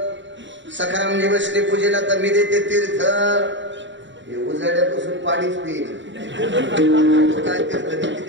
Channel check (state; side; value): late; left; 0.54 ms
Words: सखारामजी बसले पूजेला तर मी देते तीर्थ. हे उजाड्यापासून पाणीच पिईल. काय तीर्थ